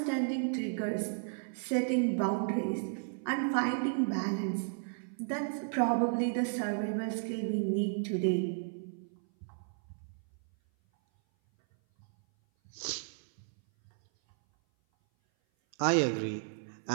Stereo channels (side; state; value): left; silent; 55 dB below the other